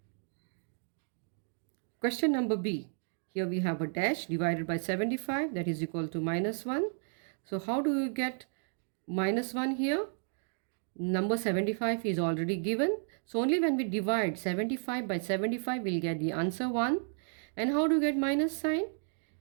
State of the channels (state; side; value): silent; left; 56 dB below the other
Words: Question number B. Here we have a dash divided by 75, that is equal to minus 1. So how do you get minus 1 here? Number 75 is already given. So only when we divide 75 by 75, we'll get the answer 1. And how do you get minus sign?